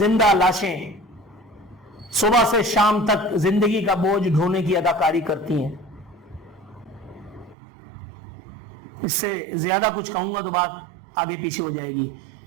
لاشیں صبح سے شام تک زندگی کا بوجھ ڈھونے کی اداکاری کرتی ہیں۔ اس سے زیادہ کچھ کہوں گا تو بات آگے پیچھے ہو جائے گی۔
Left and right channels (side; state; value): left; drops out; at 7.6 s